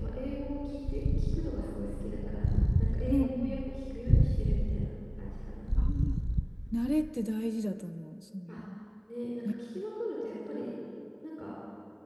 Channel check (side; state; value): both; identical; correlation 1.00